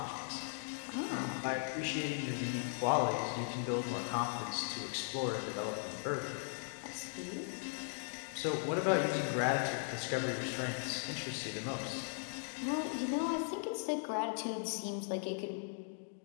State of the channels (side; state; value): right; silent; digital silence